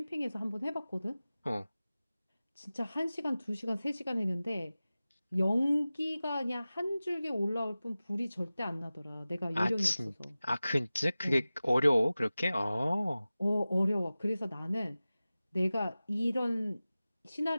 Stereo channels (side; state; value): both; inverted; correlation -0.96